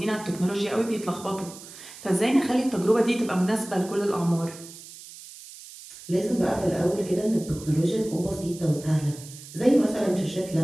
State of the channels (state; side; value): noise; right; hiss, 16 dB below the sound